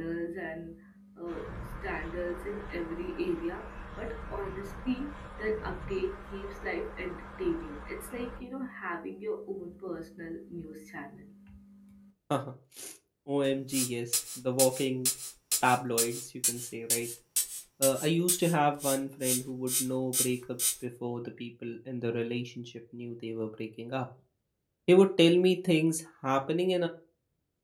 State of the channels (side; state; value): both; identical; correlation 1.00